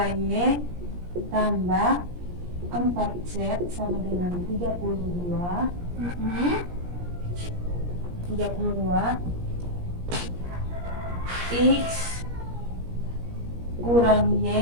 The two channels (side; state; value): left; late; 17 ms